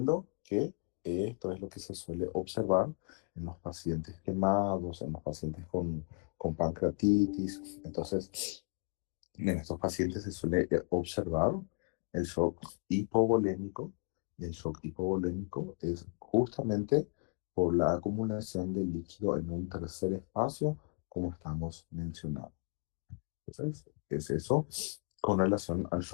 que esto es lo que se suele observar en los pacientes quemados, en los pacientes con pancreatitis. Entonces, en estos pacientes se suele observar el shock hipovolémico. Y el shock hipovolémico es justamente por la acumulación de líquido en un tercer espacio, como estamos mencionando. Entonces, es eso con relación al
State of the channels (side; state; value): right; quieter; 32.7 dB